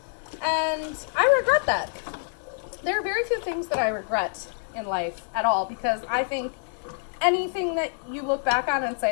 and I regret that. There are very few things that I regret in life at all, because I think anything that you look back on and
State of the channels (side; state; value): right; silent; digital silence